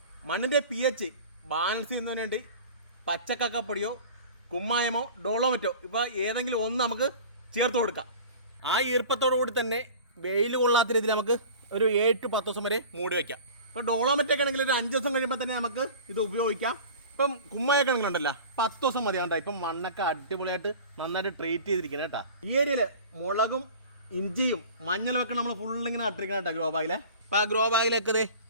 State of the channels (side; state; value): both; inverted; correlation -0.40